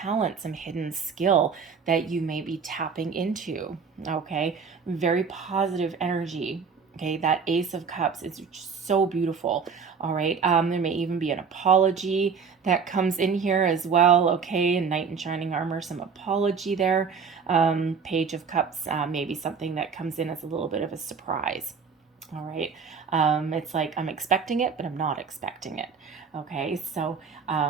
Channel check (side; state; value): left; quieter; 5.9 dB